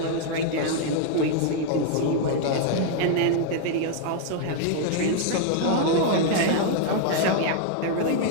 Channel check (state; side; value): different; both; correlation 0.00